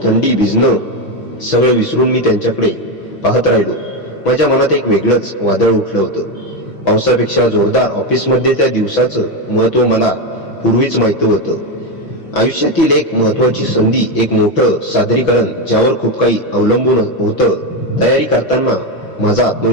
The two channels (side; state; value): right; late; 6.1 ms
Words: थंडी, भिजणं सगळं विसरून मी त्यांच्याकडे पाहत राहिलो. माझ्या मनात एक वेगळंच वादळ उठलं होतं. पावसापेक्षा जोरदार. ऑफिसमध्ये त्या दिवसाचं महत्त्व मला पूर्वीच माहित होतं. आयुष्यातील एक महत्त्वाची संधी, एक मोठं सादरीकरण ज्यावर खूप काही अवलंबून होतं. तयारी करताना माझा